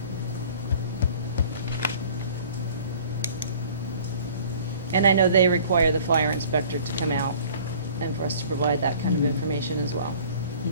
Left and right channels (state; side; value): inverted; both; correlation -0.50